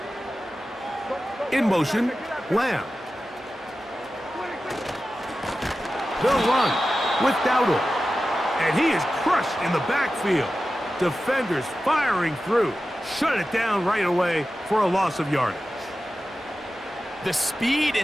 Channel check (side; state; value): both; normal; correlation 0.94